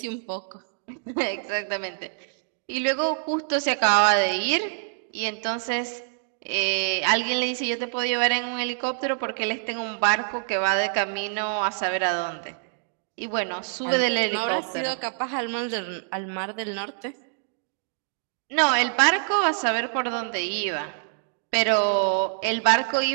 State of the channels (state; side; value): silent; left; digital silence